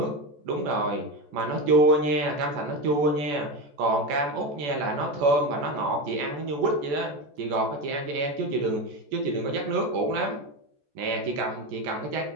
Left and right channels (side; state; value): left; late; 14 ms